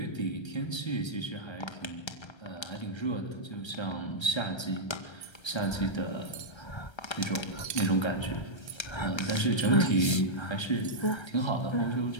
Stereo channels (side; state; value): right; late; 1.3 ms